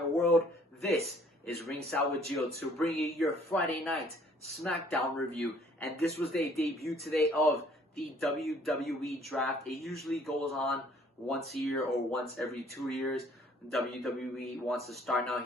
world. This is Ringside With Gio to bring you your Friday night Smackdown review. And this was the debut today of the WWE draft. It usually goes on once a year or once every 2 years. WWE wants to start now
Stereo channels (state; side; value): normal; both; correlation 0.59